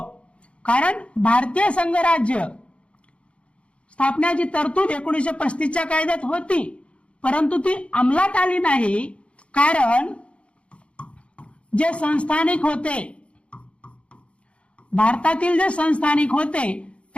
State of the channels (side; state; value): right; late; 0.060 ms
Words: कारण भारतीय संघराज्य स्थापनेची तरतूद 1935च्या कायद्यात होती परंतु ती अंमलात आली नाही. कारण जे संस्थानिक होते, भारतातील जे संस्थानिक होते